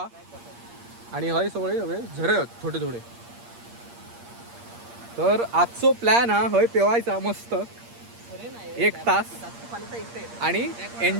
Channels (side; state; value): left; late; 8.6 ms